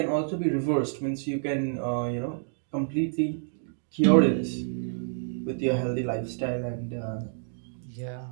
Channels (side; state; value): left; silent; digital silence